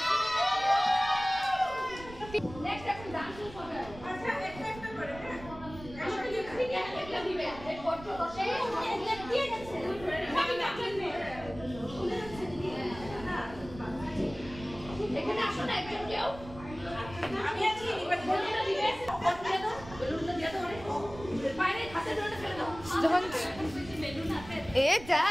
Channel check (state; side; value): noise; right; rumble, 15 dB below the sound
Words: কেউ আমি আছি এবার বেলুনটা দিয়ে দাও বেলুনটা দিয়ে দাও বাইরে হাতে ধরে ফেলে দাও যখন বেলুন হাতে এ যা